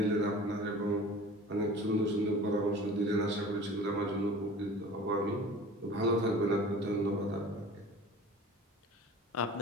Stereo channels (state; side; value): normal; both; correlation 0.41